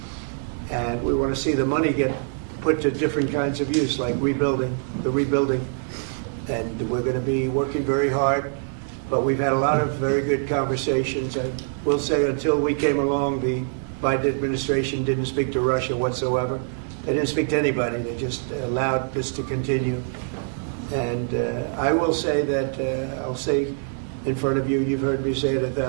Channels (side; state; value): left; silent; digital silence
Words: And we want to see the money get put to different kinds of use, like rebuilding. And we're going to be working very hard. But we've had a lot of very good conversations. I will say until we came along, the Biden administration didn't speak to Russia whatsoever. They didn't speak to anybody. They just allowed this to continue. And I will say that, I'll say in front of you, you've heard me say it